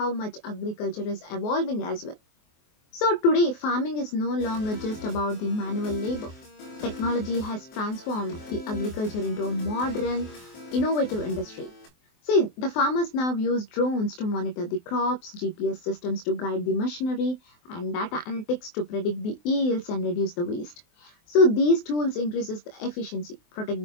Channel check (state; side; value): late; right; 23 ms